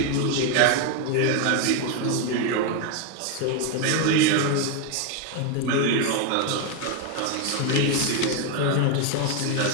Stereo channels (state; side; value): different; both; correlation 0.01